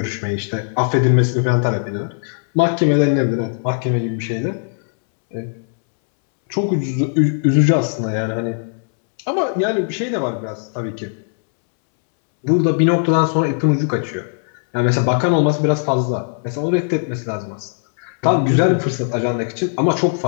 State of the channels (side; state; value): right; silent; 67 dB below the other